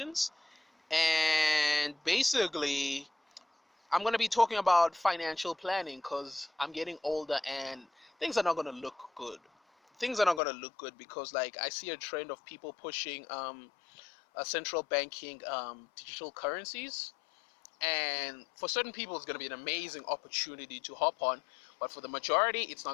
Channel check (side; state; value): right; drops out; at 10.4 s